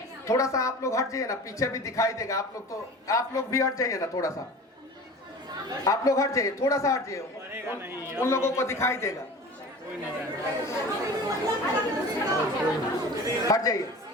थोड़ा सा आप लोग हट जाइए ना, पीछे भी दिखाई देगा। आप लोग भी हट जाइए ना, थोड़ा सा आप लोग हट जाइए, थोड़ा सा हट जाइए, उन लोगों को दिखाई देगा। हट जाइए,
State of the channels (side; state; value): both; normal; correlation 0.39